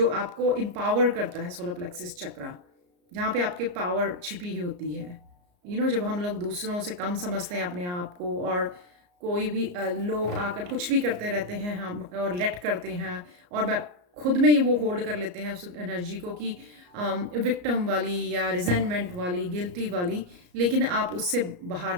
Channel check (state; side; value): late; left; 34 ms